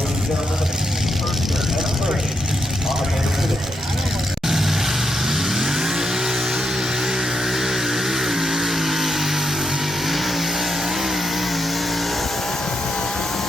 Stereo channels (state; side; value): normal; both; correlation 0.83